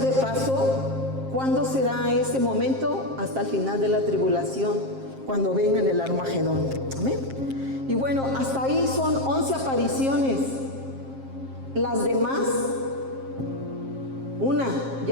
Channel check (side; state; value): left; late; 7.5 ms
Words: paso, ¿cuándo será ese momento? Hasta el final de la tribulación, cuando venga el Armagedón. Amén. Y bueno, hasta ahí son 11 apariciones. Las demás, una